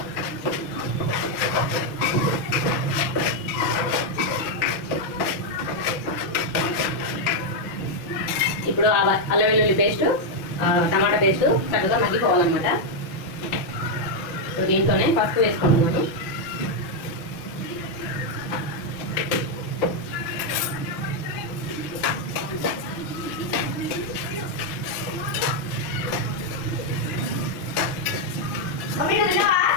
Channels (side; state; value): right; late; 5.7 ms